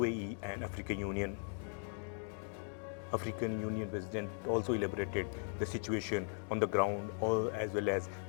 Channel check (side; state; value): right; silent; 52 dB below the other